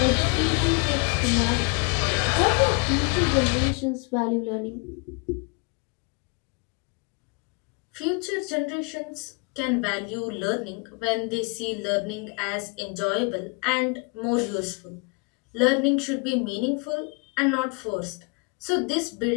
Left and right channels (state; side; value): quieter; right; 33.2 dB